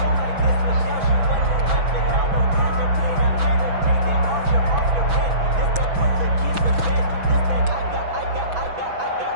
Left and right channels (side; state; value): left; late; 6.1 ms